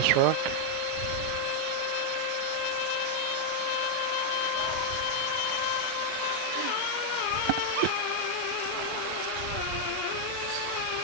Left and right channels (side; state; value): both; different; correlation 0.00